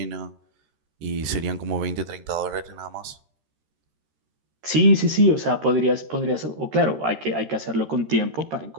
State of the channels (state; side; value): late; left; 13 ms